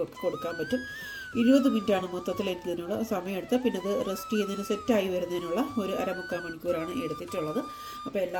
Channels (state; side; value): identical; both; correlation 1.00